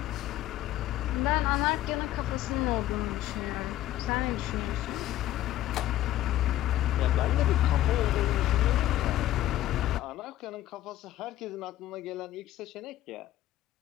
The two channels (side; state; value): right; quieter; 14.0 dB